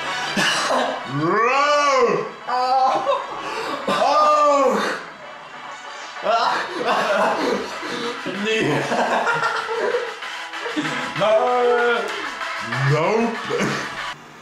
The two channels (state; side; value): identical; both; correlation 1.00